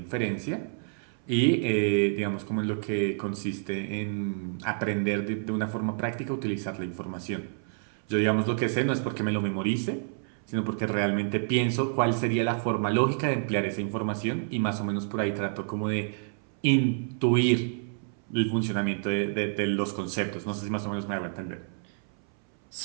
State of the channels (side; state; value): left; silent; 59 dB below the other